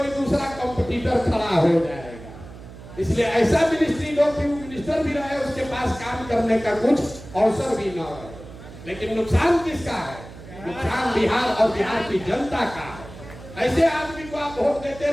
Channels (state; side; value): noise; right; hum, 16 dB below the sound